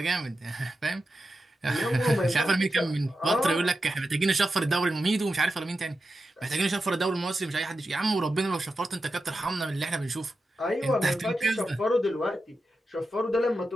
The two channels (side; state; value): both; normal; correlation 0.90